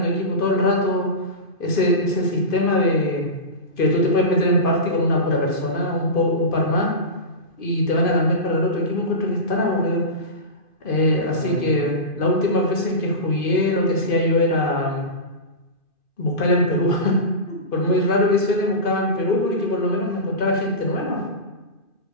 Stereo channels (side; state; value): right; late; 2.5 ms